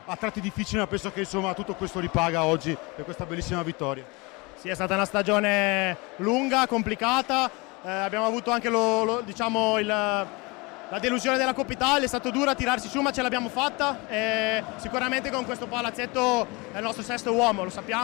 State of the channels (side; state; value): right; quieter; 26.4 dB